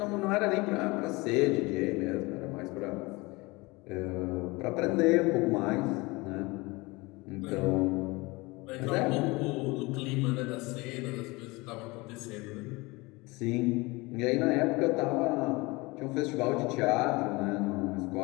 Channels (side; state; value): right; quieter; 24.0 dB